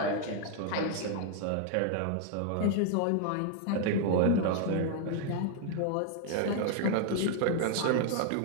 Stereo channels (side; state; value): both; different; correlation 0.00